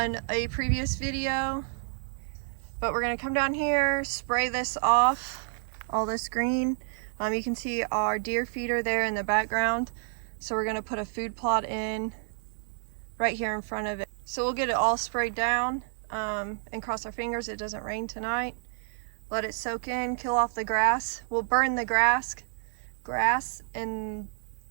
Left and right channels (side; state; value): left; silent; digital silence